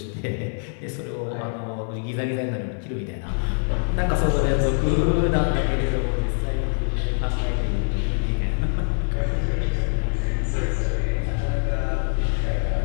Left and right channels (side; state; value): right; silent; 56 dB below the other